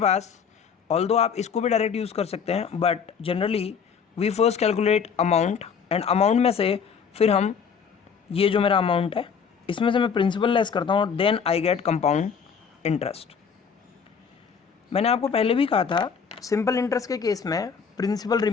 ऑल्दो आप इसको भी डायरेक्ट यूज़ कर सकते हैं, but generally we first calculate amount, and amount में से फिर हम ये जो मेरा अमाउंट है इसमें से मैं प्रिंसिपल लेस करता हूँ, then I get compound interest. मैंने आपको पहले भी कहा था सिंपल इंटरेस्ट के केस में प्रिंसिपल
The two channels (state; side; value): quieter; right; 6.5 dB